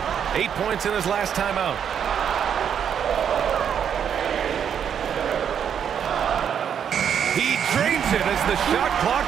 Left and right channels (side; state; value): left; quieter; 8.2 dB